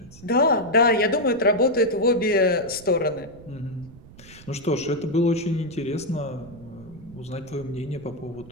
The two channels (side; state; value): right; noise; rumble, 20 dB below the sound